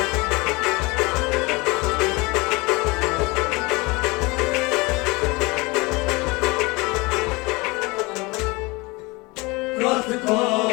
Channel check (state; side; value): quieter; right; 25.0 dB